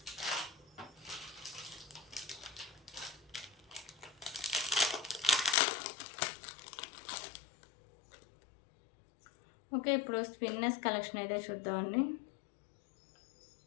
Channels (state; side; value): drops out; right; at 5.6 s